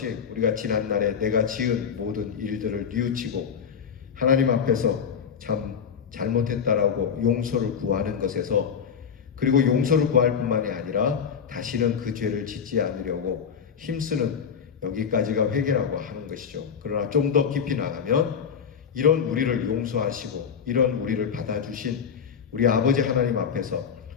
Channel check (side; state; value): right; quieter; 7.1 dB